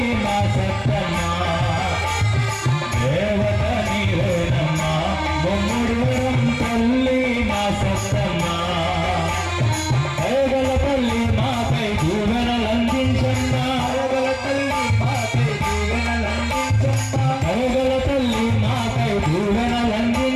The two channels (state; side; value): identical; both; correlation 1.00